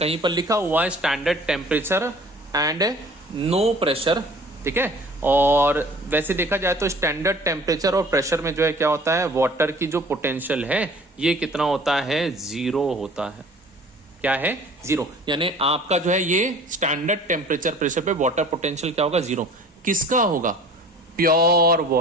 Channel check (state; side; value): normal; both; correlation 0.48